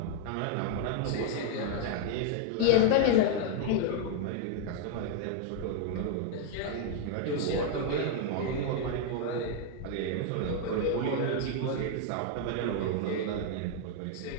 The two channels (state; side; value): different; both; correlation 0.00